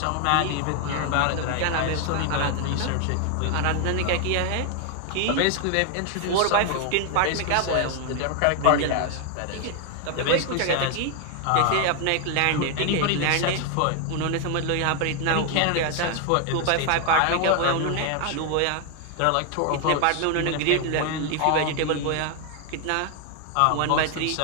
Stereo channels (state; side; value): different; both; correlation 0.00